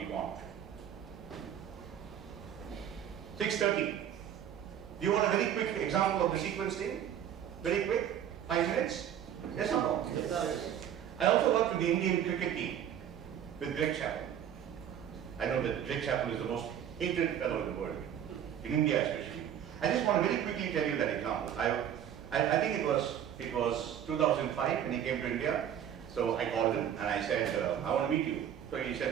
want. 6:30. Do you want a very quick example of the sequence thing? Very quick? 5 minutes? Yes or no? Yes, sir. I also work with the Indian cricket team, with Greg Chappell. I know that Greg Chappell is the most hated fellow in the world, in India especially. I just want to very quickly tell you that example. I think it was 2005 when he came to India. So I called him and I said, I want to meet you. So he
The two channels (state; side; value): quieter; left; 9.7 dB